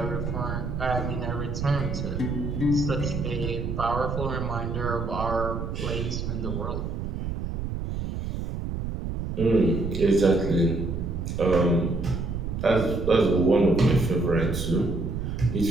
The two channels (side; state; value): right; noise; rumble, 4 dB below the sound